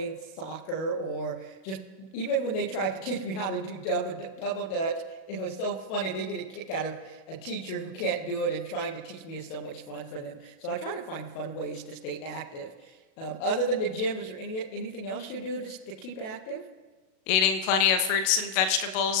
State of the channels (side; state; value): right; late; 37 ms